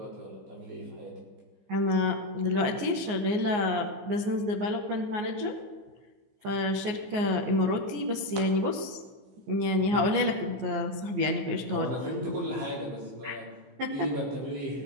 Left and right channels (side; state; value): left; late; 14 ms